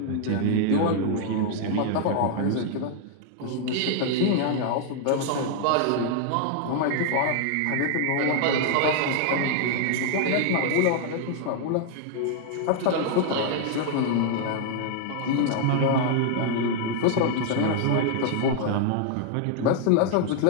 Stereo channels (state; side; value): different; both; correlation 0.00